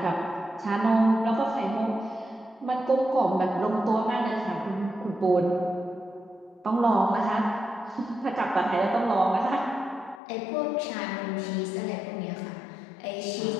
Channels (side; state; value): right; drops out; at 10.2 s